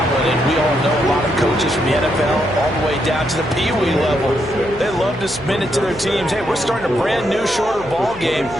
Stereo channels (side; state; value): left; noise; hum, 18 dB below the sound